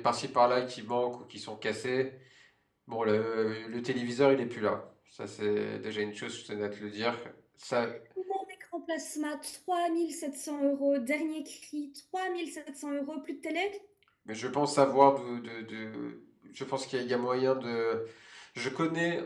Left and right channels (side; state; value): both; identical; correlation 1.00